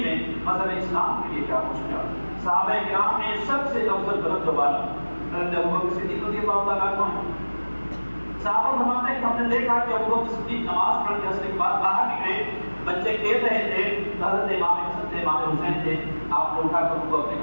میں مذہب اسلام کے لیے کیا کچھ کیا۔ صحابہ کرام میں سب سے افضل بلند والا حضرت ابوبکر صدیق رضی اللہ تعالیٰ عنہ ہیں۔ صحابہ فرماتے ہیں کہ ہم نے دیکھا کہ ابوبکر صدیق نماز پڑھ کے اثر کے بعد باہر نکلے، بچے کھیل رہے تھے، حضرت امام حسن تھے، امام حسین تھے، آپ نے اٹھا کر ان کو اپنے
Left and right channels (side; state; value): both; inverted; correlation -1.00